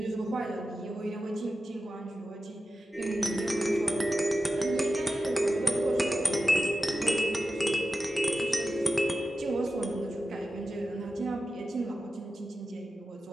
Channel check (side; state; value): both; normal; correlation 0.93